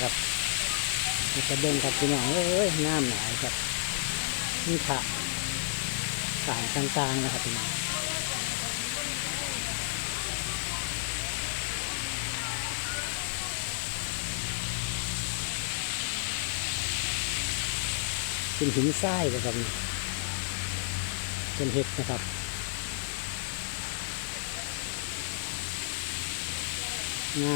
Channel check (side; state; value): right; silent; digital silence